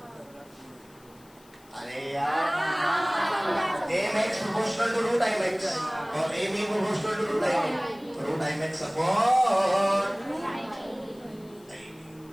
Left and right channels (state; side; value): noise; left; hiss, 28 dB below the sound